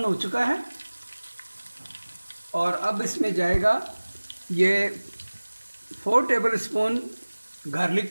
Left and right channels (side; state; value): both; inverted; correlation -1.00